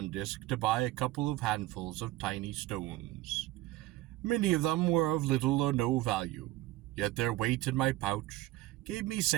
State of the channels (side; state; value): left; quieter; 17.1 dB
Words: disk to buy a couple of handfuls of tiny stones. Many of them were of little or no value, yet their weight in my pouch gave me